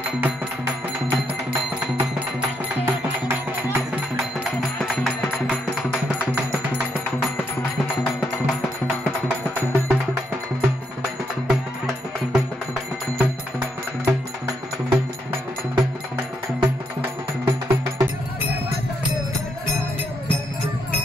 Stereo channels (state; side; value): normal; both; correlation 0.77